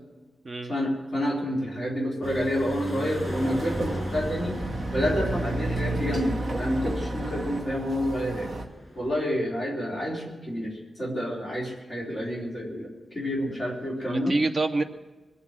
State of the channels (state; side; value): normal; both; correlation 0.88